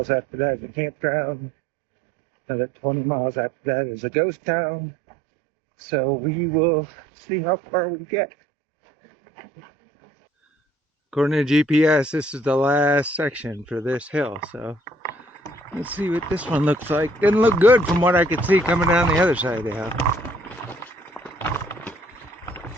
after that is a campground. Another 20 miles after that is a ghost town. So we will see how far we get. According to GPS, this is the last section for this hill. So let's see what this one looks like. Didn't look good from what I could see coming down the other side of the hill.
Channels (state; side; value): normal; both; correlation 0.59